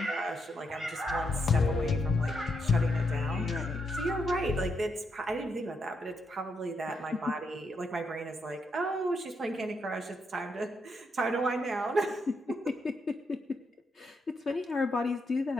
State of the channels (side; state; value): both; normal; correlation 0.79